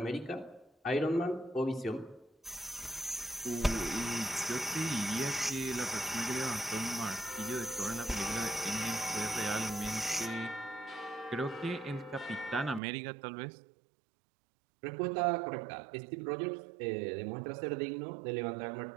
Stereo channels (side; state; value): left; drops out; at 12.8 s